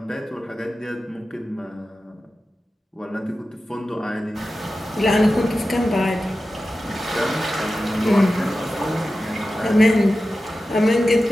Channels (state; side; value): normal; both; correlation 0.93